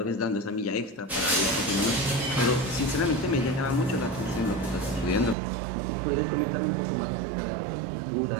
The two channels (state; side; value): drops out; left; at 5.4 s